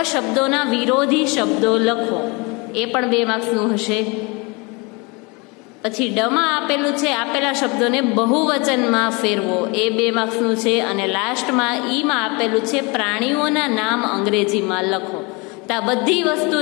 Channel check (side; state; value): right; quieter; 28.3 dB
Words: શબ્દોના વિરોધી શબ્દો લખો, એ પણ 2 માર્ક્સનું હશે. પછી ડમાં આપેલું છે આપેલા શબ્દોને બહુવચનમાં ફેરવો, એ 2 માર્ક્સનું છે. અને લાસ્ટમાં ઈમાં આપેલું છે પ્રાણીઓના નામ અંગ્રેજીમાં લખો. તો આ બધી વસ્તુ